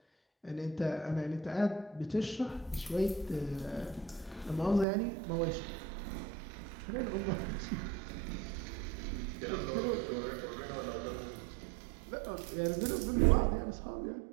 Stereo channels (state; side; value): drops out; left; at 4.9 s